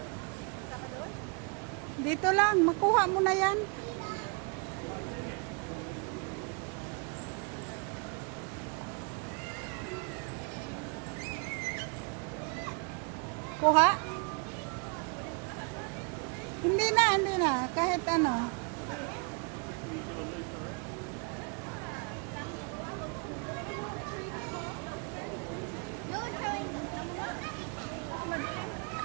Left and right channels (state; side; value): quieter; left; 33.4 dB